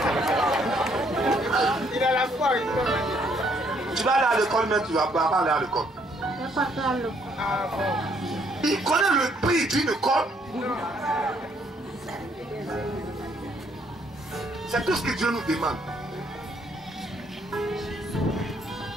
Il a la foi. Tu vas aller à l'école, mais tu ne vas pas aller à l'école. Il connaît le prix d'une école. C'est tout ce que Dieu nous demande.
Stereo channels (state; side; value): normal; both; correlation 0.68